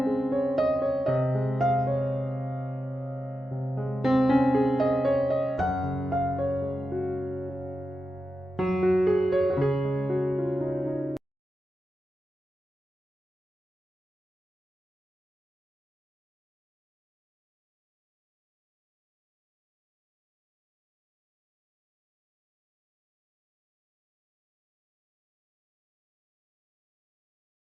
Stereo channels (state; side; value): normal; both; correlation 0.90